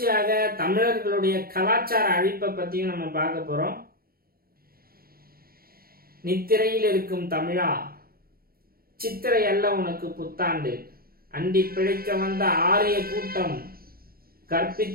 தமிழர்களுடைய கலாச்சார அழிப்பை பற்றியும் நம்ம பார்க்க போகிறோம். நித்திரையில் இருக்கும் தமிழா, சித்திரை அல்ல உனக்கு புத்தாண்டு, அண்டி பிழைக்க வந்த ஆரிய கூட்டம்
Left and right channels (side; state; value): left; late; 0.43 ms